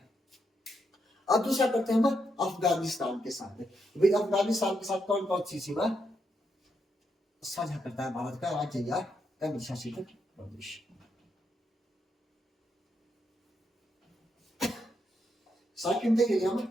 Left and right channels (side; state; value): both; normal; correlation 0.80